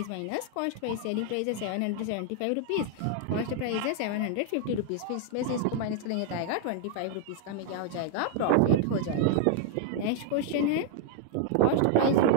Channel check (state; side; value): different; both; correlation 0.00